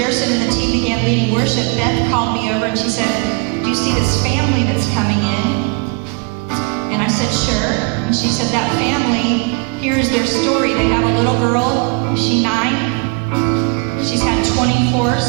and the team began leading worship, Beth called me over and she said, "Do you see this family that's coming in?" And I said, "Sure." And she said, "That family, here's their story. They have a little girl. She's 9. She's had 24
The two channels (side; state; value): left; quieter; 29.9 dB